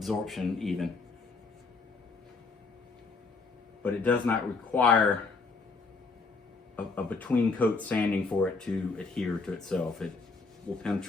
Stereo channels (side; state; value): right; quieter; 4.1 dB